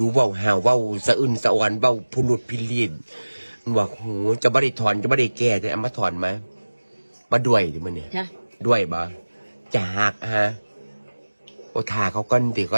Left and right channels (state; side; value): inverted; both; correlation -1.00